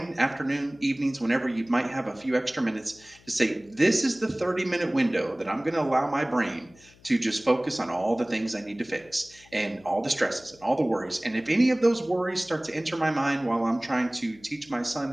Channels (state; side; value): noise; left; hum, 27 dB below the sound